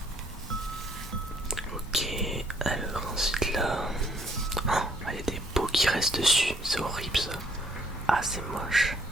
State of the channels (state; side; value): normal; both; correlation 0.66